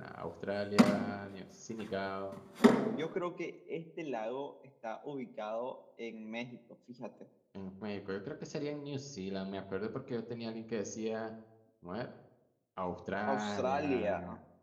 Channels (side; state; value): both; identical; correlation 1.00